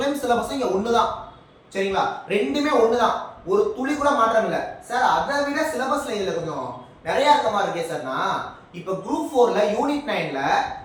சிலபஸும் இங்க ஒண்ணுதான். சரிங்களா? ரெண்டுமே ஒண்ணுதான். ஒரு துளி கூட மாற்றம் இல்ல. சார் அதை விட சிலபஸ்ல இதுல கொஞ்சம் நிறைய இருக்கமா இருக்கே சார்னா, இப்போ குரூப் 4ல யூனிட் 9ல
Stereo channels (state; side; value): identical; both; correlation 1.00